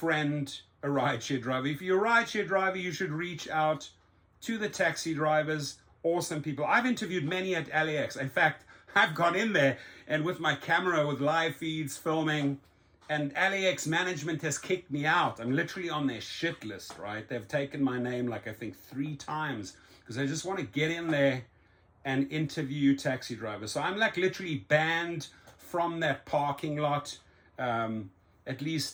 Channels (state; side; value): identical; both; correlation 1.00